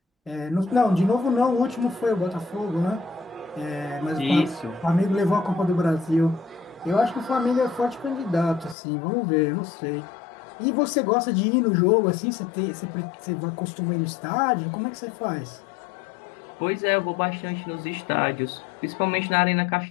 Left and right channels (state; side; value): drops out; right; at 8.8 s